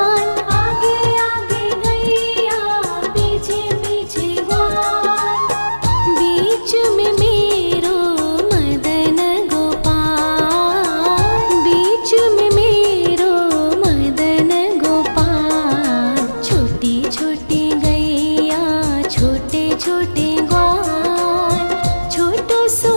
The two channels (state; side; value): inverted; both; correlation -1.00